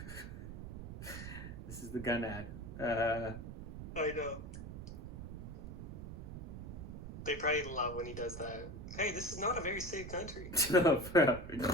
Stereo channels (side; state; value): right; noise; rumble, 9 dB below the sound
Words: This is the gun ad. I know. They probably love when he does that. Hey, this is not a very safe country. No,